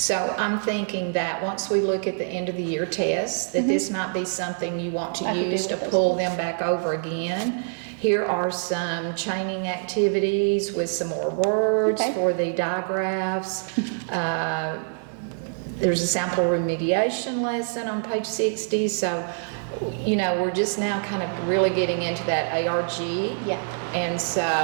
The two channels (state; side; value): silent; left; digital silence